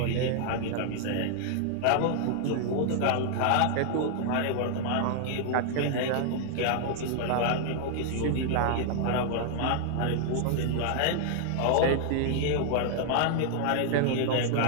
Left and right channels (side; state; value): both; different; correlation 0.00